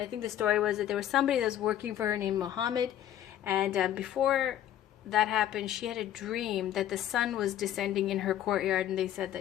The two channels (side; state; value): right; quieter; 11.5 dB